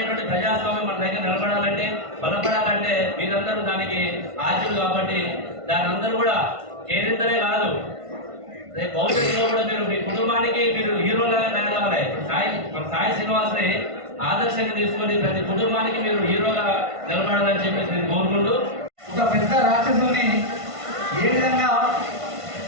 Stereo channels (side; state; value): left; late; 1.5 ms